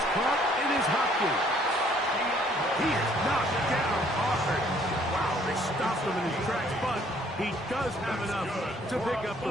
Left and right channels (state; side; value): normal; both; correlation 0.61